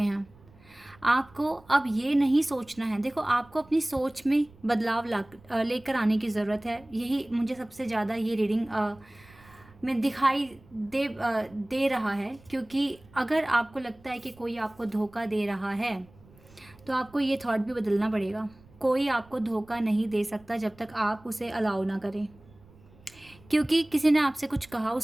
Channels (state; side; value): noise; right; rumble, 26 dB below the sound